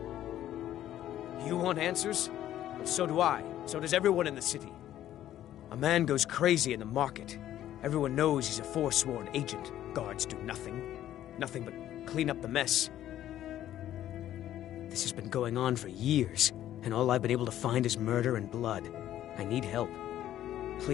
You want answers? Well, so do I. So does everyone in the city. A man goes crazy in the market. Everyone knows he's a forsworn agent. Guards do nothing. Nothing but clean up the mess. This has been going on for years, and all I've been able to find is murder and blood. I need help.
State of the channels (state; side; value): quieter; right; 12.4 dB